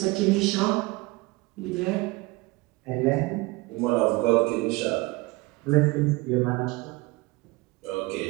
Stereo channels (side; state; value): left; quieter; 23.0 dB